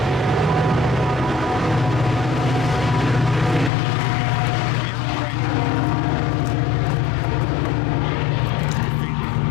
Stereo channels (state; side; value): drops out; right; at 3.7 s